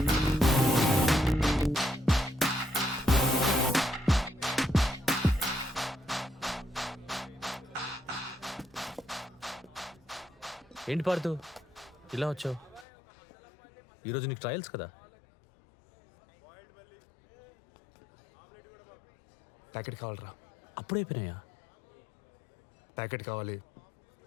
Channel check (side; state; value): right; drops out; at 12.9 s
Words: ఏంటి పార్థు ఇలా వచ్చావు? ఈరోజు నీకు ట్రయల్స్ కదా? ప్యాకెట్ కావాలరా? అప్పుడైపోయినాయా? ప్యాకెట్ కావాలి.